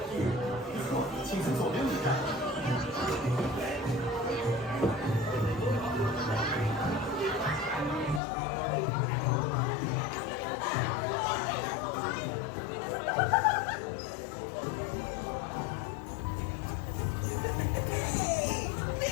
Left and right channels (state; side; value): drops out; right; at 8.2 s